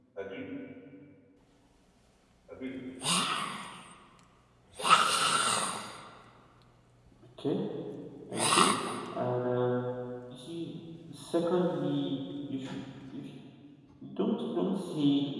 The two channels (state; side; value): identical; both; correlation 1.00